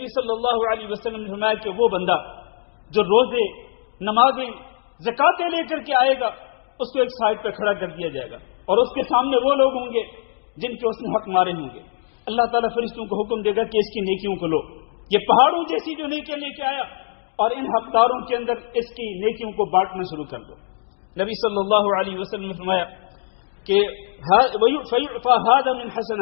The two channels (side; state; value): right; silent; digital silence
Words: صلی اللہ علیہ وسلم نے فرمایا کہ وہ بندہ جو روزے، نمازیں، زکاتیں لے کر کے آئے گا، اس کو ایک سائڈ پہ کھڑا کر دیا جائے گا، اور اس کے سامنے وہ لوگ ہوں گے جن کے اس نے حق مارے ہوں گے. اللہ تعالیٰ فرشتوں کو حکم دے گا کہ اس کی نیکیوں کو لو. یہ پہاڑوں جیسی جو نیکیاں لے کے آیا اور ان حقداروں کے اندر اس کی نیکیوں کو بانٹنا شروع کر دو. نبی صلی اللہ علیہ وسلم نے فرمایا کہ هَذَا مِنْ